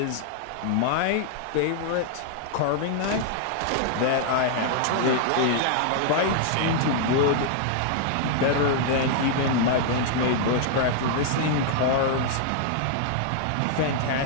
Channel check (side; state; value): both; different; correlation -0.01